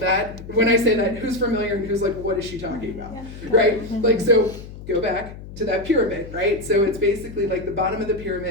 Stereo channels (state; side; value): noise; left; hum, 14 dB below the sound